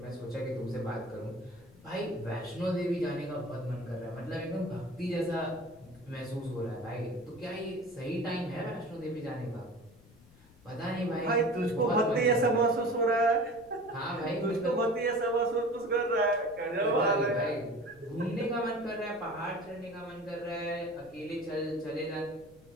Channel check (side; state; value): left; noise; rumble, 25 dB below the sound